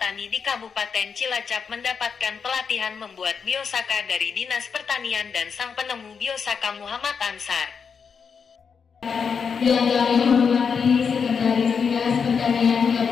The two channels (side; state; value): right; quieter; 6.2 dB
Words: di Kabupaten Cilacap mendapatkan pelatihan membuat biosaka dari Dinas Pertanian dan sang penemu biosaka Muhammad Ansar. Yang kami hormati Sekretaris Dinas Pertanian